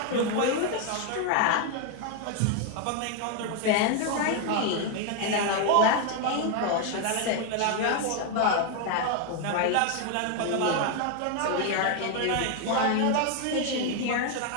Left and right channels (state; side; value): different; both; correlation 0.01